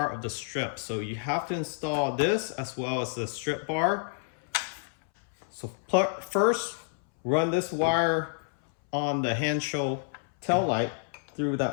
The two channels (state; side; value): silent; right; 59 dB below the other